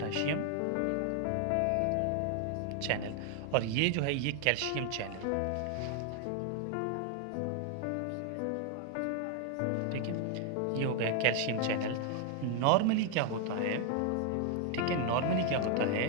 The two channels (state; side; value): different; both; correlation 0.00